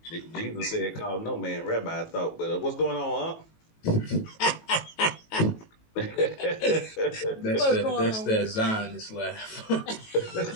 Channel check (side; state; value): right; late; 18 ms